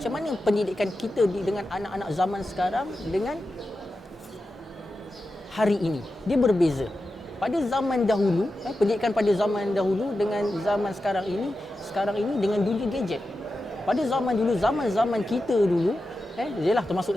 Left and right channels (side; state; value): both; normal; correlation 0.91